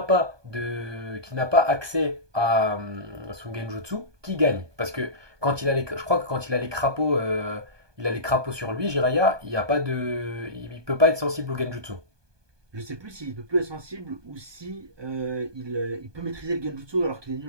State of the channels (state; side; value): late; left; 1.2 ms